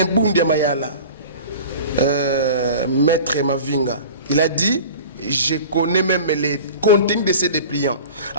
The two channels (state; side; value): inverted; both; correlation -0.39